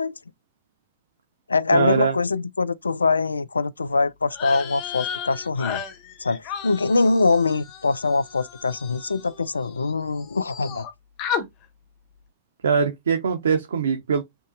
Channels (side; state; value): both; inverted; correlation -0.79